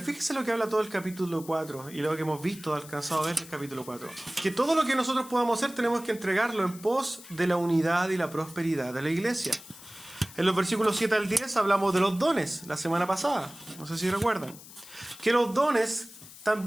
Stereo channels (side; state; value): left; noise; hiss, 18 dB below the sound